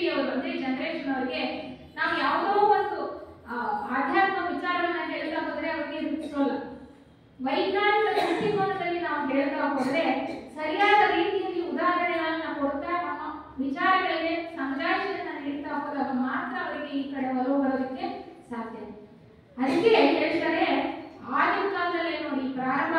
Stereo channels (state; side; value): identical; both; correlation 1.00